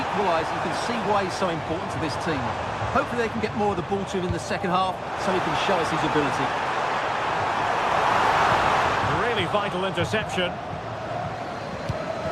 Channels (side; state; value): both; identical; correlation 1.00